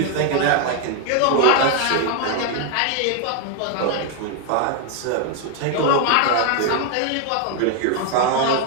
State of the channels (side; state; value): both; different; correlation 0.01